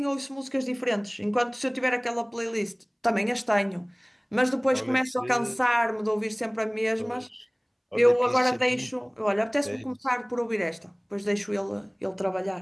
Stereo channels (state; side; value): identical; both; correlation 1.00